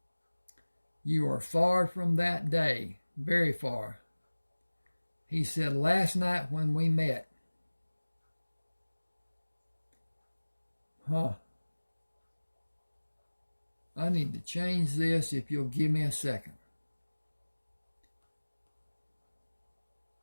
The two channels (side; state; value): both; inverted; correlation -1.00